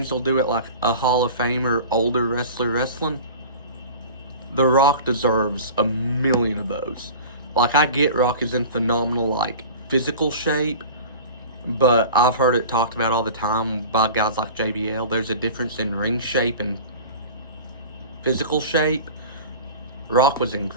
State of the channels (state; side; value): inverted; both; correlation -0.37